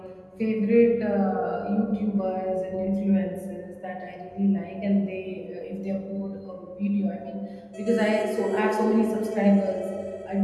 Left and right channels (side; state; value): both; identical; correlation 1.00